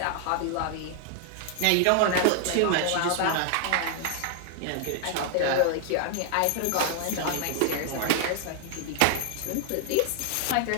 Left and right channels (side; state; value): both; different; correlation 0.00